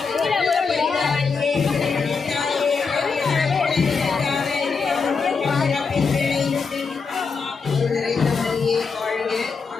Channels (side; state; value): right; quieter; 5.1 dB